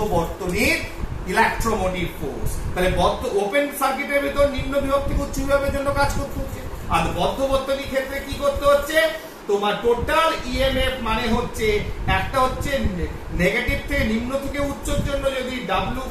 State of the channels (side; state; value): both; identical; correlation 1.00